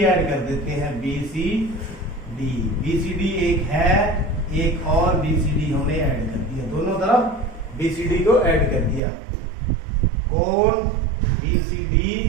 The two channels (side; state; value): left; drops out; at 9.0 s